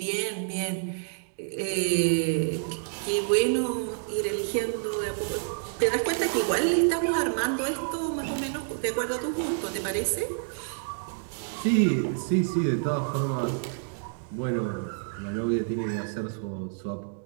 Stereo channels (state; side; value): silent; left; digital silence